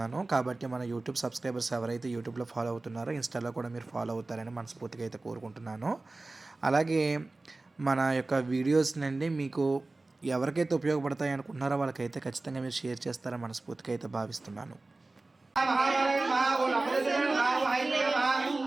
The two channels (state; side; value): quieter; left; 3.2 dB